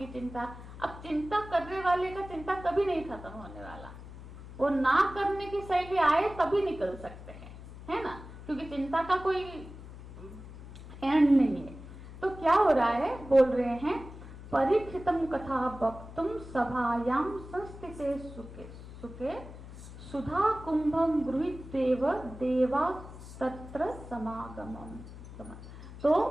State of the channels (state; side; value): noise; left; hum, 14 dB below the sound